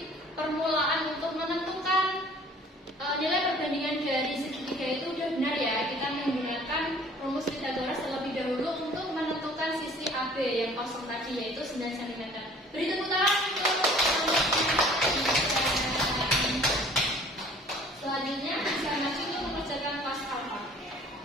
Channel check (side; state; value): both; normal; correlation 0.52